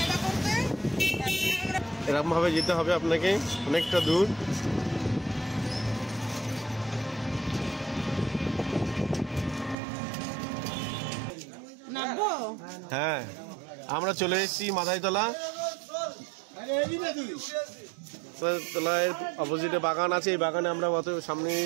এরকম ভাবে যেতে হবে আপনাকে, অনেকটা দূর। হ্যাঁ, আমরা চলে এসেছি মাথায়তলা। তলায় অপোজিটে বাগান আছে, এই বাগানে আমরা সামনে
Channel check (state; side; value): drops out; left; at 9.8 s